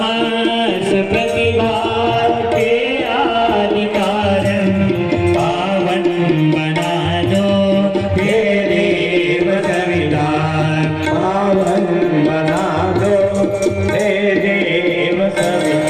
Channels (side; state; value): both; identical; correlation 1.00